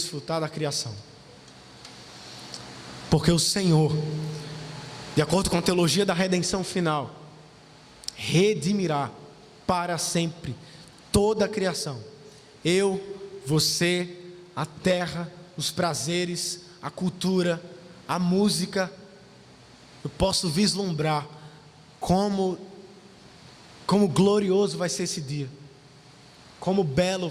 da criação. Porque o Senhor, de acordo com a teologia da redenção final, redimirá para sempre toda a criação. Eu, você, a terra, os prazeres, a cultura, a música. Eu posso vislumbrar como glorioso vai ser esse dia, como belo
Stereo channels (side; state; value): both; identical; correlation 1.00